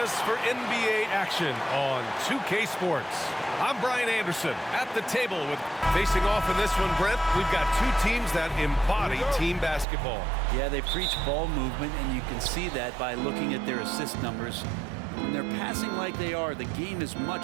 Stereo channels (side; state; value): left; drops out; at 9.9 s